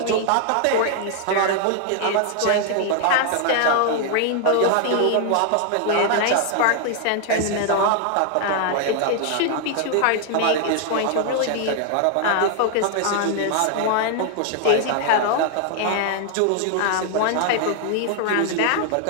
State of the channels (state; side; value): different; both; correlation 0.00